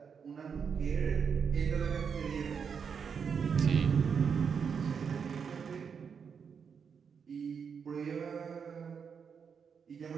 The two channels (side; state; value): left; quieter; 6.5 dB